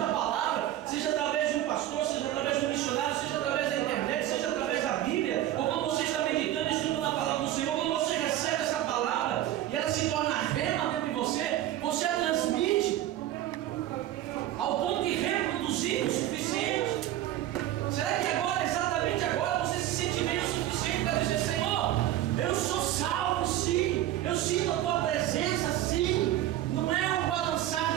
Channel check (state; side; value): quieter; left; 13.3 dB